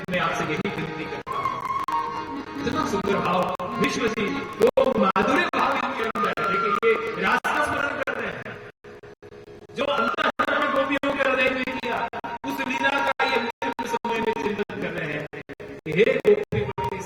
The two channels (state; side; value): identical; both; correlation 1.00